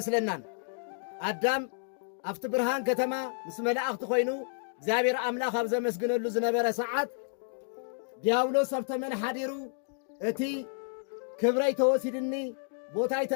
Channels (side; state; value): right; silent; digital silence